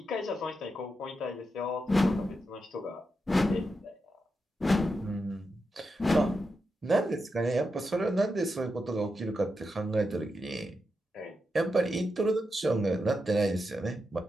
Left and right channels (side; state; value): both; normal; correlation 0.87